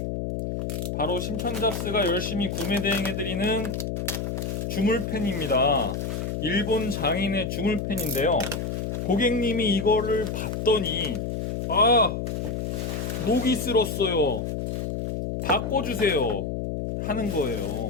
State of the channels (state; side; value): noise; left; hum, 3 dB below the sound